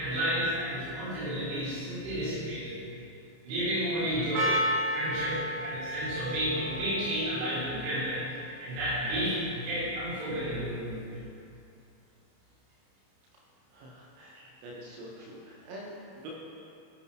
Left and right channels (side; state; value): left; late; 31 ms